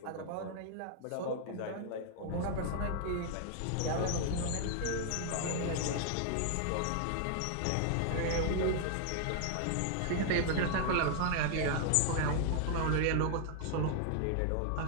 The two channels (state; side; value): different; both; correlation 0.00